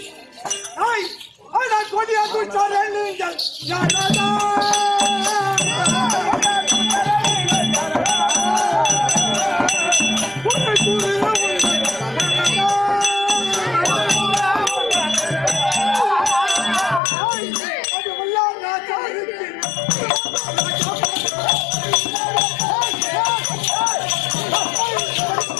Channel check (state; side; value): drops out; right; at 17.0 s